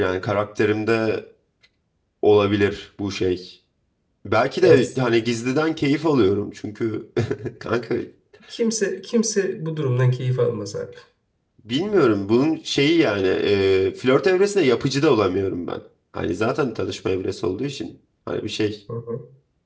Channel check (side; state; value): both; identical; correlation 1.00